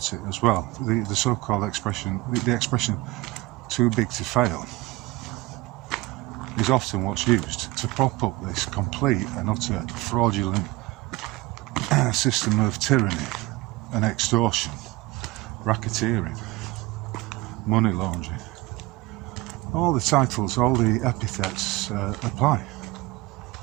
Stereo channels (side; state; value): left; quieter; 20.0 dB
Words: it as well. The so-called expression, the expression "too big to fail," is often what's used to prop up this complete and utter fraudulent system of tyranny and extortion, racketeering, money laundering. All the titles, all the epithets apply.